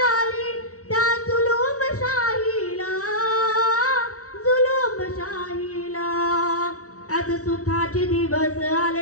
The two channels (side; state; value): right; late; 0.65 ms